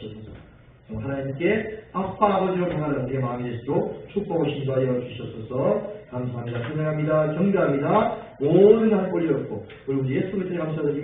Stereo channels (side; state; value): both; identical; correlation 1.00